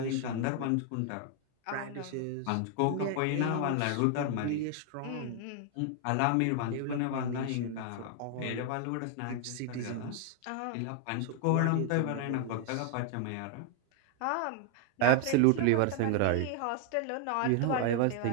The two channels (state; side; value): different; both; correlation 0.00